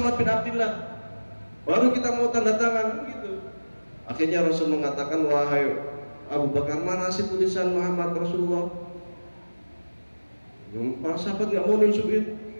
bin Abdullah, baru kita mau tanda tangan gitu. Akhirnya Rasul mengatakan, wahai Abu Bakar, mana sih tulisan Muhammad Rasulullah? Para sahabat nggak mau nunjukin,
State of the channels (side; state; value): both; inverted; correlation -1.00